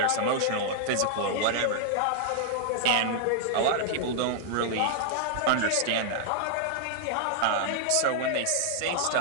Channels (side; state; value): both; different; correlation 0.00